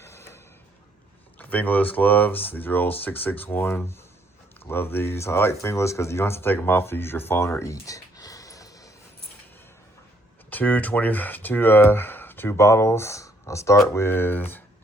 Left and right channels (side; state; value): both; normal; correlation 0.68